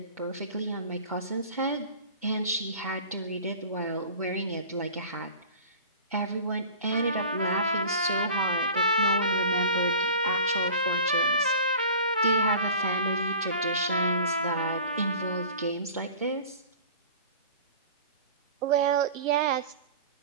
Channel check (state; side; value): inverted; both; correlation -0.41